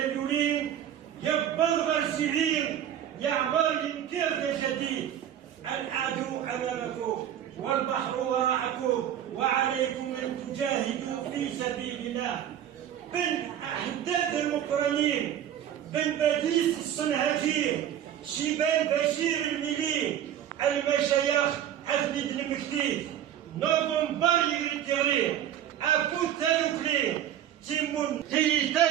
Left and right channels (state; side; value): quieter; left; 10.6 dB